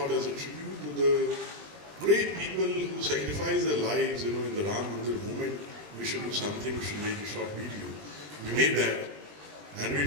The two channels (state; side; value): late; left; 20 ms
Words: as a tribute to the great people who sacrificed their lives, in the Ram Mandir movement, we should do something, we should make a short video. We made that and we